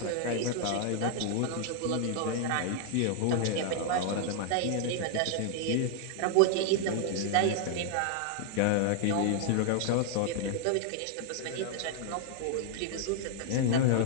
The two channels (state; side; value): different; both; correlation 0.00